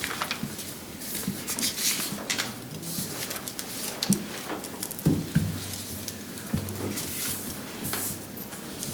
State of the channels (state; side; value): identical; both; correlation 1.00